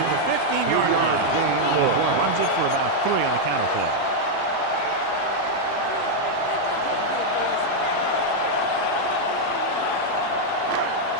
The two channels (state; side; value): different; both; correlation -0.01